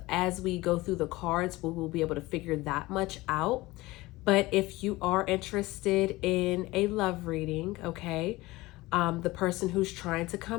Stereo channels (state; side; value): quieter; right; 19.9 dB